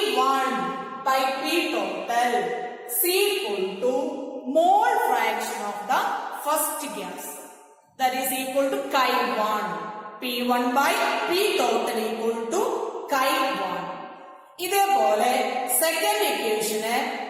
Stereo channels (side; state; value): both; identical; correlation 1.00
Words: by P total is equal to mole fraction of the first gas. That is equal to Chi1. P1 by P total equal to Chi1. ഇതേപോലെ second ഇക്വേഷന്